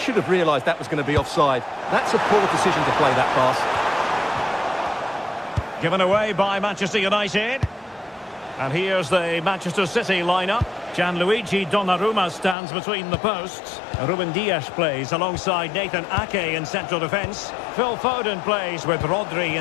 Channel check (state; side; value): drops out; right; at 12.6 s